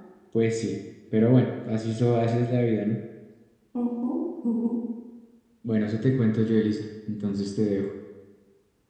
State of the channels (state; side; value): identical; both; correlation 1.00